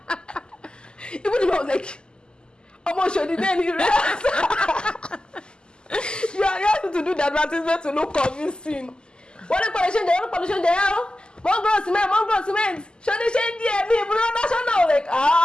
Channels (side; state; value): right; late; 0.047 ms